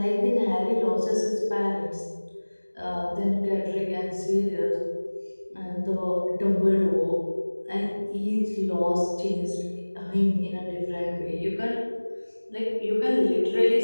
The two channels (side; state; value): both; inverted; correlation -1.00